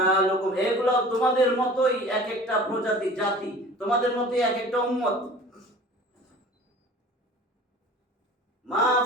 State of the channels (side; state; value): both; normal; correlation 0.43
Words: এগুলো তোমাদের মতোই এক একটা প্রজাতি জাতি, তোমাদের মতোই এক একটা উম্মত। মা